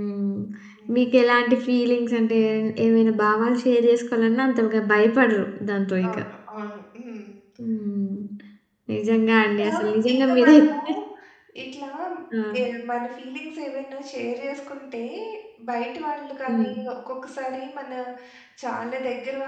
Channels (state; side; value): identical; both; correlation 1.00